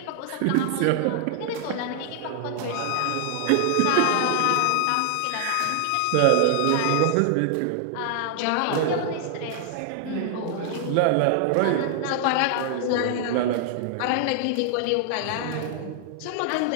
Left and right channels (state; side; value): different; both; correlation 0.00